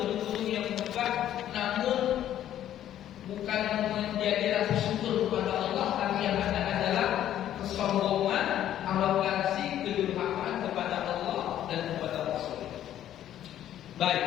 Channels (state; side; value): quieter; right; 11.6 dB